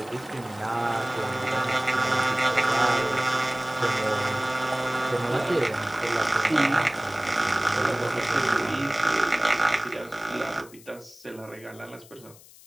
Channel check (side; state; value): left; noise; hiss, 22 dB below the sound